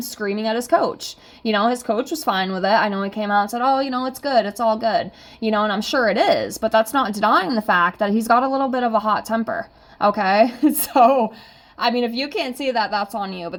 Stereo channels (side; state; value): both; identical; correlation 1.00